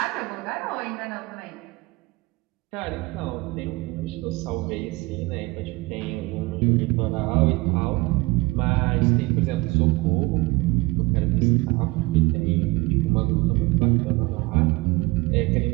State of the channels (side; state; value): left; quieter; 23.2 dB